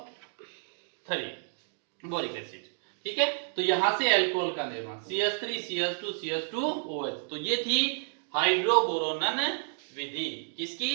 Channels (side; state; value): left; silent; digital silence